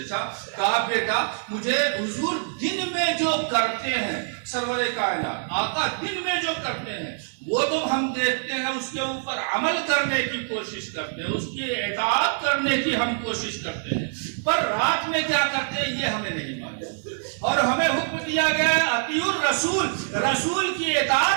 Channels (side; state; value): left; silent; 61 dB below the other